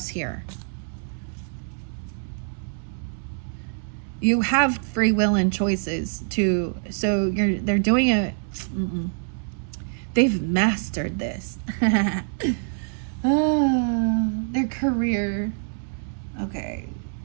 here. You have free will and choices to, so they're doing it. They've mastered this. Their career. Okay.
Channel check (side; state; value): left; silent; 62 dB below the other